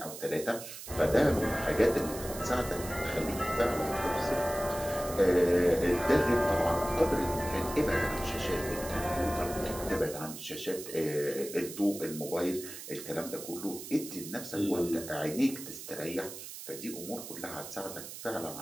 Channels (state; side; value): noise; right; hiss, 11 dB below the sound